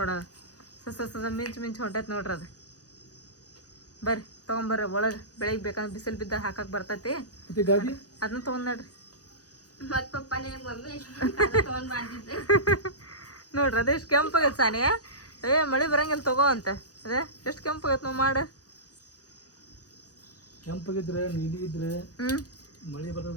ಮಿಂಚ್ ಹೊಂಟೈತಿ ನೋಡ್ರಿ ಅದು ಬರ್ರಿ ತಗೊಂಬರ್ರಿ ಒಳಗೆ ಬೆಳಿಗ್ಗೆ ಬೇಕಂದ್ರೆ ಬಿಸಿಲು ಬಿದ್ದಾಗ ಹಾಕಕ್ ಬರ್ತೈತಿ ಅದನ್ನ ತಗೊಂಡ್ ನೋಡ್ರಿ ಮತ್ ಪಪ್ಪ ನಿನಗೆ ಮಮ್ಮಿ ತಗೊಂಡ್ ಮಾಡ್ತಿದ್ದೆ ನೋಡ್ರಿ ಅದೇ ಎಷ್ಟು ಕೆಂಪಾಗೈತೆ ಸಾನಿಯ ಮಳೆ ಬರಂಗಿಲ್ಲ ತಗೋ ಅಂತ ಅದೇ ಎಷ್ಟು ಕೆಂಪಾಗೈತೆ ನಾವು ಮಾಡ ಕೆಂಪಾಗಿದ್ರೆ ನೀಲಿ ಇದ್ರೆ ಮಳಿ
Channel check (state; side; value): late; right; 0.67 ms